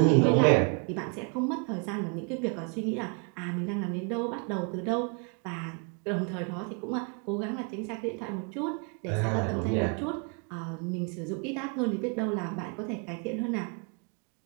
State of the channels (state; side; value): quieter; left; 35.7 dB